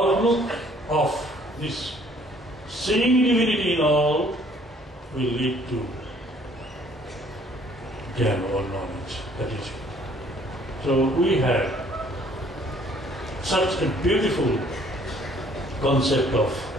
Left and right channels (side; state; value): both; normal; correlation 0.59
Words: of this seeing divinity in all will lead to jnana or knowledge. That is it. So we have such a beautiful concept of